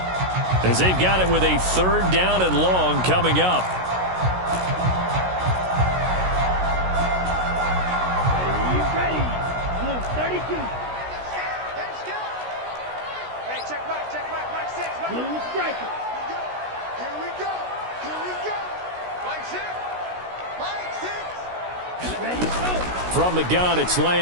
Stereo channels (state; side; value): late; left; 16 ms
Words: as they've got it with a 3rd down and long coming up. Ready. Blue 32. Hey, check Mike 6. Blue striker. Here we go. Mike 6. Ready, go. From the gun, it's